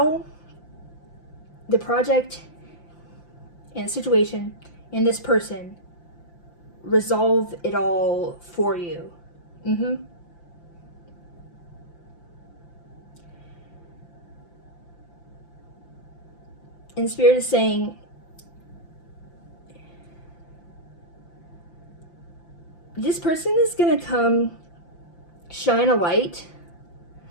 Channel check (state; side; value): late; right; 5.8 ms